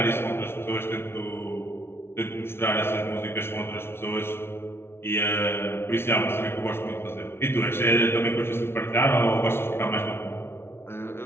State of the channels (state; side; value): late; right; 0.12 ms